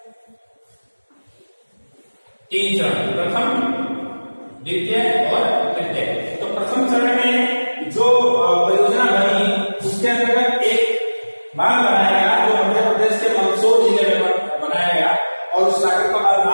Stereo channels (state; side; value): inverted; both; correlation -1.00